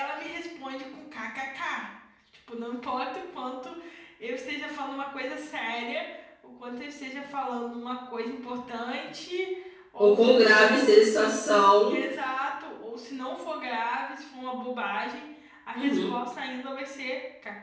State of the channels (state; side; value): identical; both; correlation 1.00